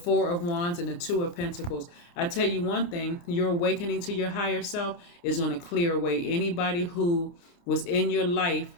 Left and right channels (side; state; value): right; late; 29 ms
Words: of Wands, and the Two of Pentacles. I tell you one thing, your awakening to your higher self is going to clear away anybody who was in your life